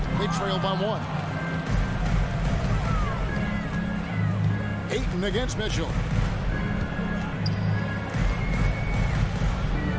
They trail by 1. Ayton against Mitchell.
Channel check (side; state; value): both; identical; correlation 1.00